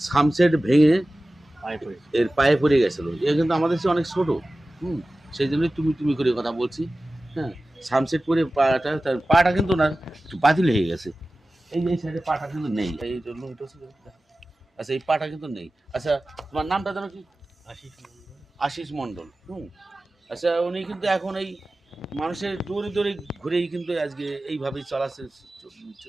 সামসেট ভেঙে এর পায়ে পড়ে গেছিলো। এ কিন্তু আমাদের চেয়ে অনেক ছোটো। সেই জন্যই তুমি তুমি করে কথা বলছি। হ্যাঁ, সানসেট পরে পাটা, তার পাটা কিন্তু না একটু বাতিল হয়ে গেছে। এই যে এই সাইডে পাটা কিন্তু নেই, এই জন্য এটা হচ্ছে। আচ্ছা এই পাটা কিন্তু নেই। আচ্ছা তোমার নামটা জানো কি? আশিস মণ্ডল। আচ্ছা উনি কিন্তু এখন এই মানুষের দৌড়ে দৌড়ে ঘুরেই কিন্তু আজকে এইভাবেই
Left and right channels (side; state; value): both; normal; correlation 0.96